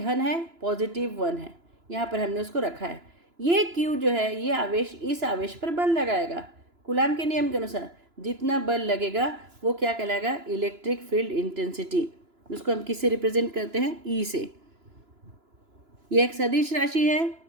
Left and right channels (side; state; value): left; late; 2.9 ms